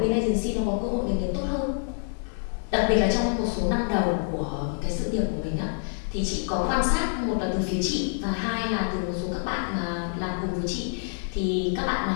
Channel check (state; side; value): silent; right; digital silence